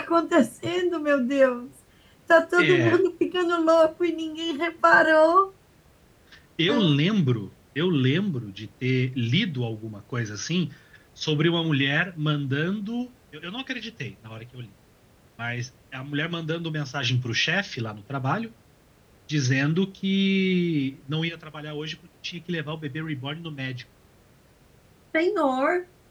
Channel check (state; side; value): identical; both; correlation 1.00